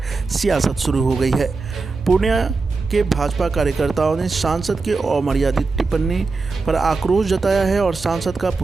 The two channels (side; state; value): left; quieter; 4.1 dB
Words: सियासत शुरू हो गई है। पूर्णिया के भाजपा कार्यकर्ताओं ने सांसद के अमर्यादित टिप्पणी पर आक्रोश जताया है और सांसद का